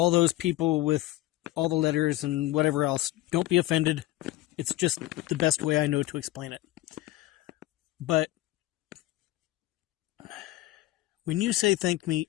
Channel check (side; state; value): right; quieter; 16.5 dB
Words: those people with all the letters and whatever else, don't be offended. It's just the best way I know to explain it. But when you say thank